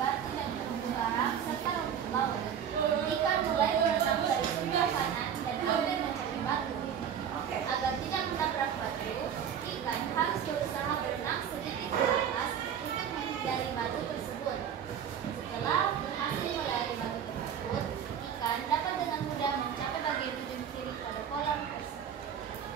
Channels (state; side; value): quieter; left; 8.5 dB